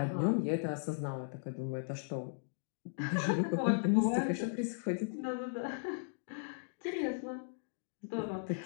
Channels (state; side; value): silent; right; digital silence